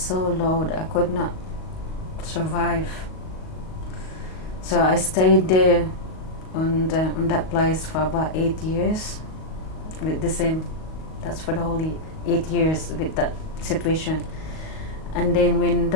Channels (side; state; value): right; late; 38 ms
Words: so low that I could not survive. So I stayed there on that place for about 8 years with the same. That's for the whole 8 years with that situation. And then when